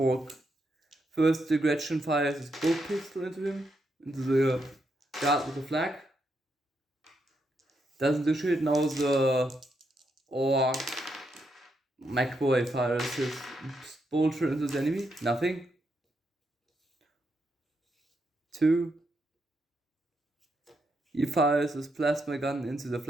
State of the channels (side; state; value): both; normal; correlation 0.81